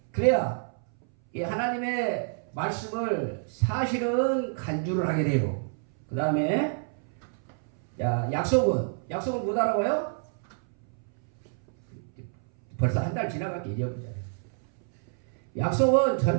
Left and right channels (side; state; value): left; silent; 59 dB below the other